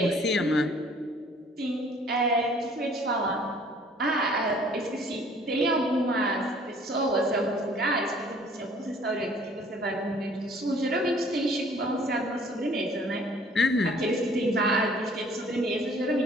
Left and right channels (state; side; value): normal; both; correlation 0.56